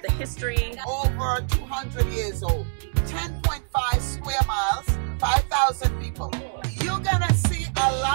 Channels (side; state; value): left; silent; digital silence